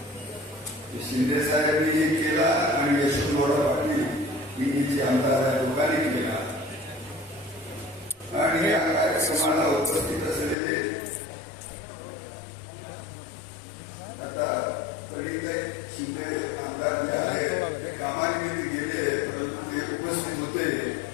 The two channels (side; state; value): right; drops out; at 10.6 s